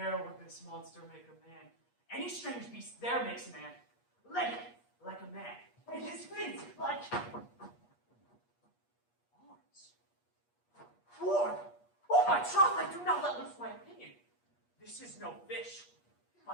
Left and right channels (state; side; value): late; right; 8.4 ms